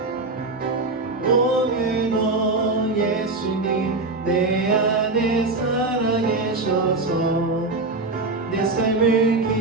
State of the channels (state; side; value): quieter; left; 3.3 dB